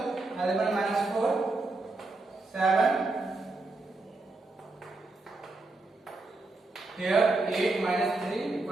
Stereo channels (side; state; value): left; quieter; 3.3 dB